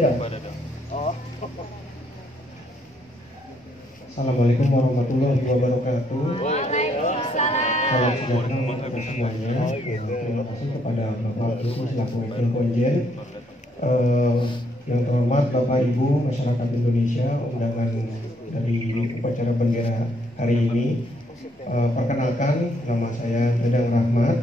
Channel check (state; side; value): normal; both; correlation 0.71